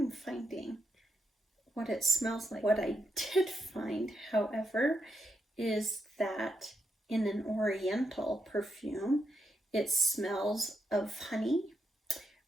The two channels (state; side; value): normal; both; correlation 0.82